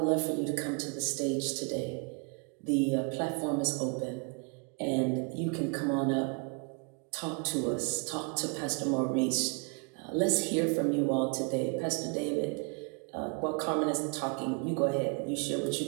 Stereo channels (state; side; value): quieter; left; 35.6 dB